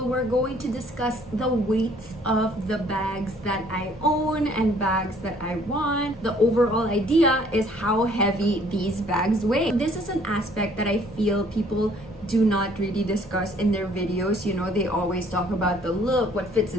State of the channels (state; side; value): normal; both; correlation 0.59